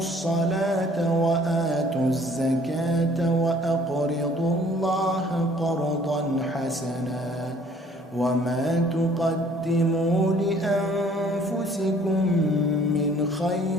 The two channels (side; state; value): both; normal; correlation 0.57